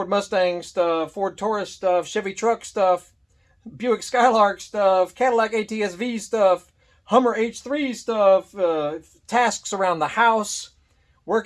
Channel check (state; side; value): identical; both; correlation 1.00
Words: Mustang stuff, Ford Taurus stuff, Chevy truck stuff, Buick Skylark stuff, Cadillac ATS-V stuff, Hummer H3 stuff, tasks around the house,